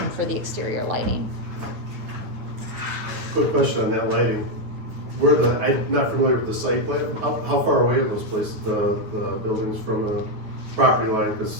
for the exterior lighting. quick question on that lighting. I'm not familiar with the site plan. How far away are those places, the buildings from a property line?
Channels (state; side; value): late; left; 9.6 ms